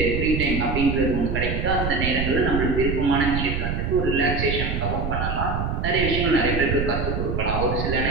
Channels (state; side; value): noise; right; rumble, 2 dB below the sound